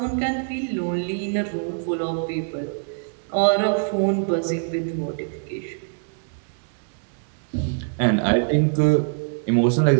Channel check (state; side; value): silent; left; digital silence